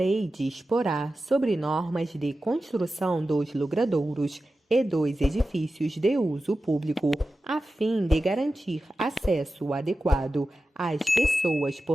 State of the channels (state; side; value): normal; both; correlation 0.93